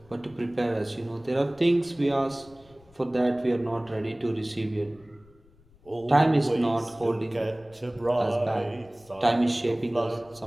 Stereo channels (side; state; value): left; noise; rumble, 28 dB below the sound